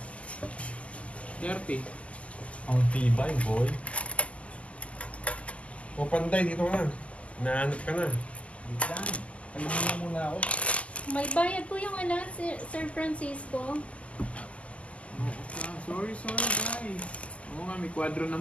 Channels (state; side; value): late; right; 0.064 ms